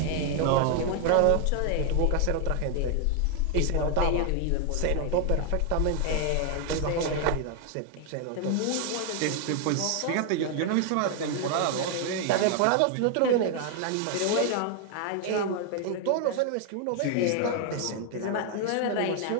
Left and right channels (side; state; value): both; different; correlation 0.00